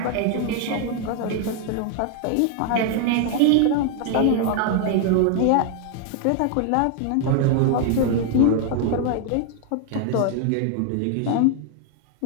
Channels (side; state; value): both; different; correlation 0.00